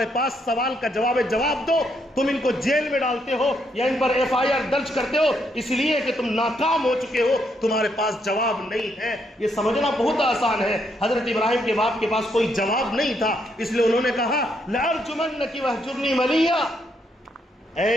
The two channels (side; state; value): both; normal; correlation 0.75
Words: پاس سوال کا جواب ہے، جواب دو۔ تم ان کو جیل میں ڈالتے ہو یا ان پر FIR درج کرتے ہو اس لیے کہ تم ناکام ہو چکے ہو، تمہارے پاس جواب نہیں ہے۔ یہ سمجھنا بہت آسان ہے۔ حضرت ابراہیم کے باپ کے پاس کوئی جواب نہیں تھا، اس لیے انہوں نے کہا لَأَرْجُمَنَّكِ وَاهْجُرْنِي مَلِيًّا،